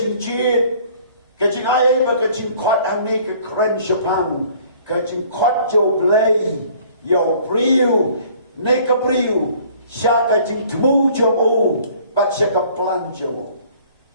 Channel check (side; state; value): both; inverted; correlation -0.55